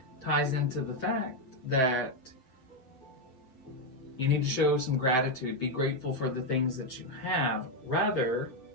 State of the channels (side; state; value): right; late; 7.7 ms